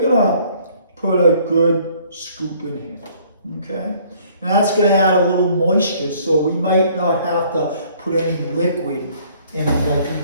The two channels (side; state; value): both; inverted; correlation -0.59